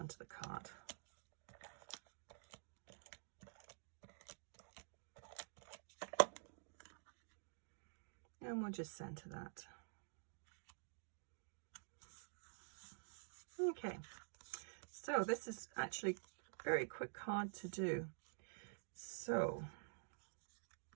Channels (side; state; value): left; silent; digital silence